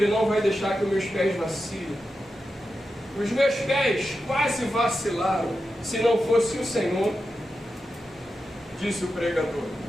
não vai deixar que os meus pés vacilem. Os meus pés quase vacilaram se não fosse o Senhor, disse o pregador.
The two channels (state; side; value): normal; both; correlation 0.90